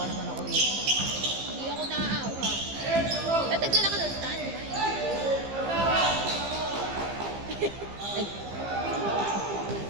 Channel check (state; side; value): late; left; 15 ms